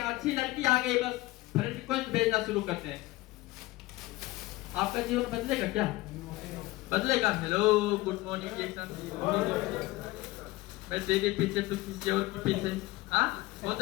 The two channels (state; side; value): quieter; right; 19.6 dB